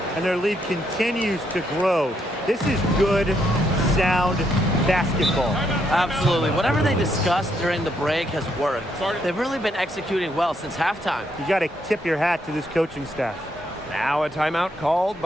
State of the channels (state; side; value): normal; both; correlation 0.75